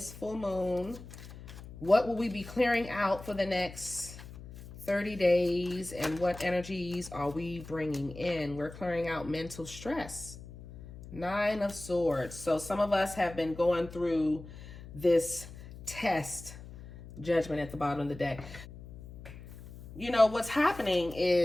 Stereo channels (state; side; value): noise; left; hum, 15 dB below the sound